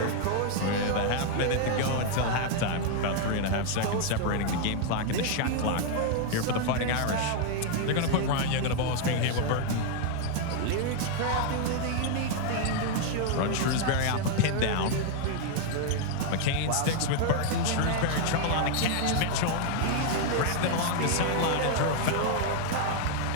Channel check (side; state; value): both; different; correlation 0.00